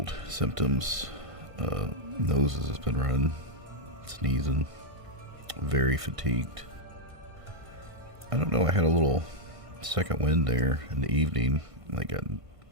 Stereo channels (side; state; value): left; late; 1.5 ms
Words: symptoms. Noses has been running, sneezing, very fatigued. I don't know, I had a little second wind there in the evening. Like I